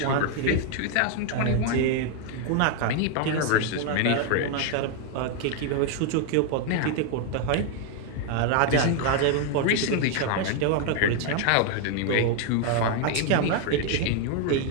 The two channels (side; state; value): both; different; correlation 0.00